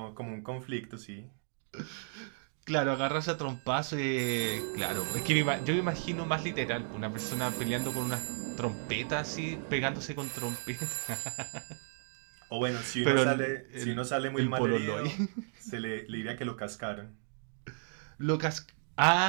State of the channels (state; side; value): silent; left; digital silence